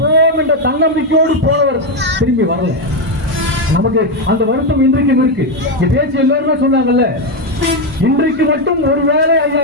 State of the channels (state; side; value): normal; both; correlation 0.06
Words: போவோம் என்ற தன்னம்பிக்கையோடு போனவர் திரும்பி வரல. நமக்கு அந்த வருத்தம் இன்றைக்கும் இருக்கு. பேச்சு எல்லாருமே சொன்னாங்கல்ல, இன்றைக்கு மட்டும் ஒருவேளை